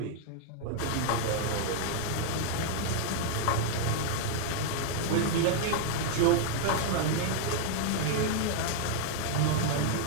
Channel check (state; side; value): different; both; correlation 0.00